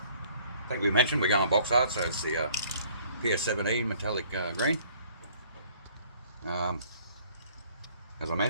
think we mentioned we're going box art, so it's the PS17 metallic green. As I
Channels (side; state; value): both; inverted; correlation -0.58